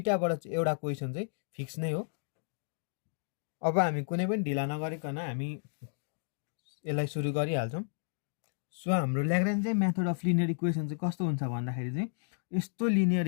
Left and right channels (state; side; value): silent; right; digital silence